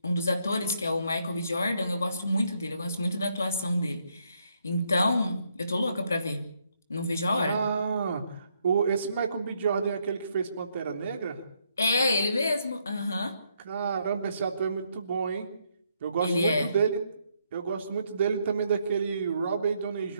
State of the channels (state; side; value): inverted; both; correlation -0.74